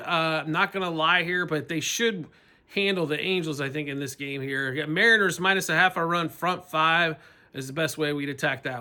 I'm not going to lie here, but they should handle the Angels, I think, in this game here. Mariners -0.5 run front 5 is the best way we'd attack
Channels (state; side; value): identical; both; correlation 1.00